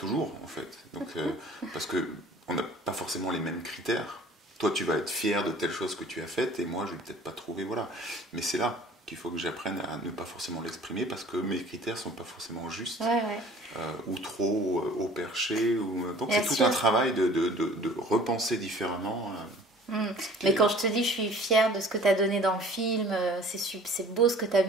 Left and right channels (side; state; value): both; normal; correlation 0.49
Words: en fait. Donc, parce qu'on n'a pas forcément les mêmes critères. Toi, tu vas être fier de telle chose que tu as faite et moi, je ne vais peut-être pas trouver. Voilà. Mais c'est là qu'il faut que j'apprenne à ne pas forcément l'exprimer parce que mes critères ne sont pas forcément justes ou trop haut perché. Donc c'est tout un travail de repenser différemment. Mais quand je te dis je suis fière de ce que tu as donné dans le film, c'est beau ce que tu as